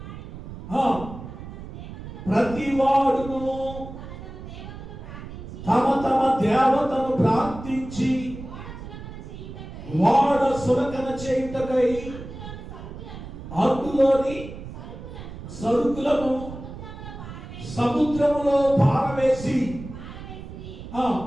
ప్రతి వాడును తమ తమ దేవతను ప్రార్థించి వాడ సురకన చేయుటకై అందులోని సరుకులను సముద్రములో పారవేసి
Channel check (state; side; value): noise; right; rumble, 12 dB below the sound